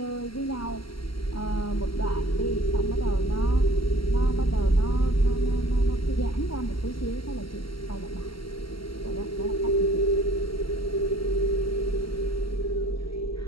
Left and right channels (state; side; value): late; right; 0.74 ms